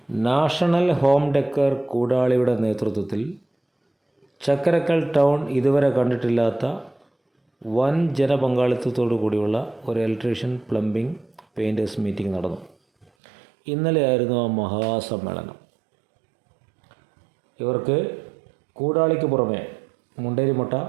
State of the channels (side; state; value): left; drops out; at 13.1 s